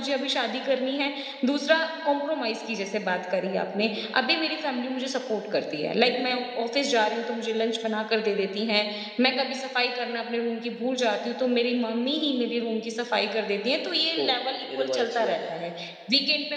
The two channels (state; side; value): identical; both; correlation 1.00